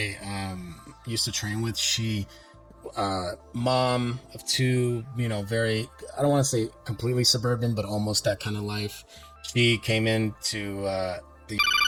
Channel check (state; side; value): identical; both; correlation 1.00